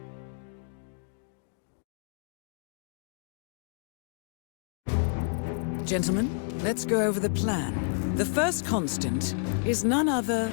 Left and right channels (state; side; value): silent; right; digital silence